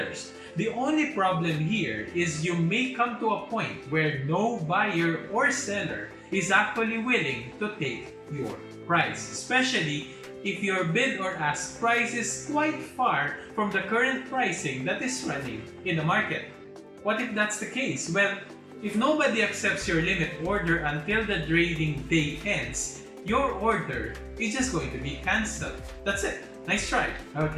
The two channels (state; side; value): identical; both; correlation 1.00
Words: The only problem here is you may come to a point where no buyer or seller is actually willing to take your price, especially if your bid or ask price is quite far from the current pricing that is running in the market. What if that's the case? Well, if nobody accepts your limit order until the trading day ends, your order is just going to be cancelled. That's it. Nice try.